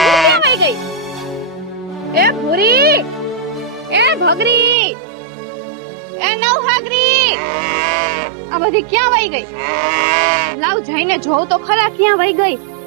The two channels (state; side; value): drops out; left; at 4.8 s